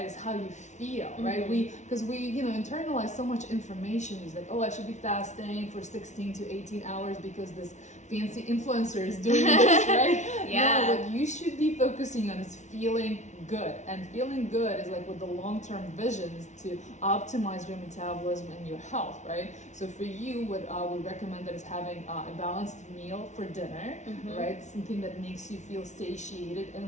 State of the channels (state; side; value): late; right; 0.34 ms